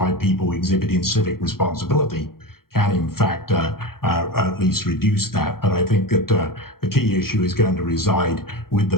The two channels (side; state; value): right; late; 0.93 ms